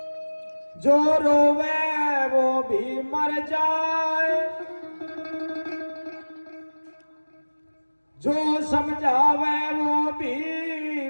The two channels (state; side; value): inverted; both; correlation -1.00